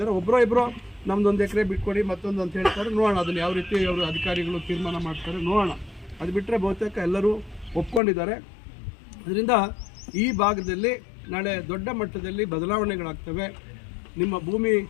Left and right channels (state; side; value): drops out; right; at 8.0 s